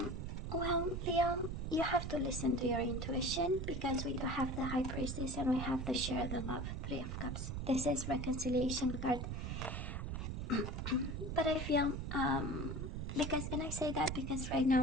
Well, Leo, you have to listen to your intuition, because we do have the High Priestess and we have the Share the Love, Three of Cups. This is reconciliation card. But I feel, and I say that because right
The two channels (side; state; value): right; noise; rumble, 4 dB below the sound